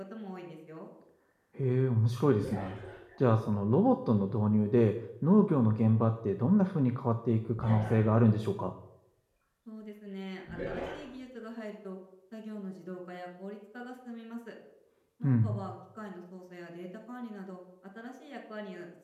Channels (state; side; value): identical; both; correlation 1.00